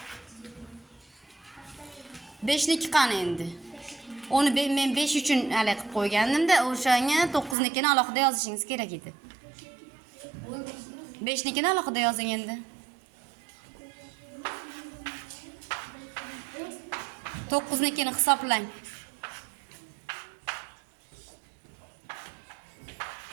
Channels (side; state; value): left; drops out; at 7.6 s